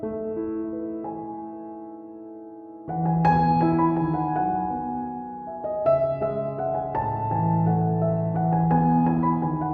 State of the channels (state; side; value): identical; both; correlation 1.00